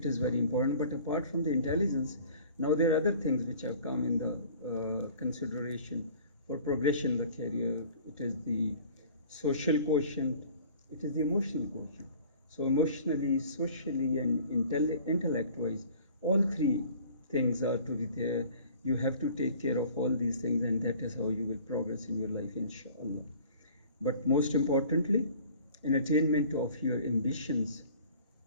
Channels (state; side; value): inverted; both; correlation -0.48